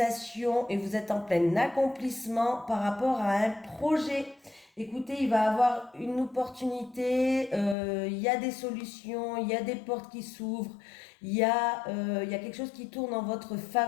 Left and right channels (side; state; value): right; drops out; at 7.8 s